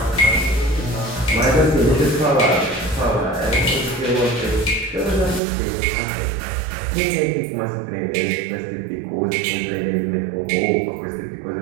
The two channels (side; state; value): left; drops out; at 5.4 s